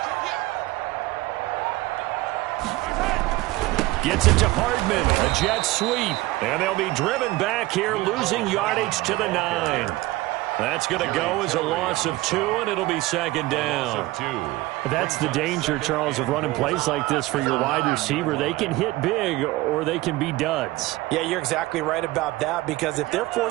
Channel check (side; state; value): left; quieter; 19.1 dB